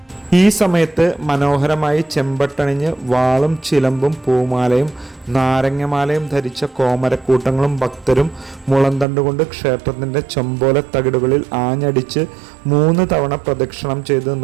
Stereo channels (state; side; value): drops out; left; at 9.1 s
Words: ഈ സമയത്ത് മനോഹരമായി ചെമ്പട്ടണിഞ്ഞ് വാളും ചിലമ്പും പൂമാലയും നാരങ്ങമാലയും ധരിച്ച കോമരക്കൂട്ടങ്ങളും ഭക്തരും മുളന്തണ്ടുകൊണ്ട് ക്ഷേത്രത്തിൻ്റെ ചൊമ്പോല തകിടുകളിൽ ആഞ്ഞടിച്ച് 3 തവണ പ്രദക്ഷിണം ചെയ്ത്